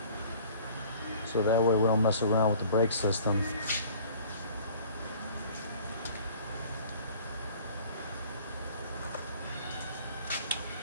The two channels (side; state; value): both; inverted; correlation -0.50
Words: So that way we don't mess around with the brake system.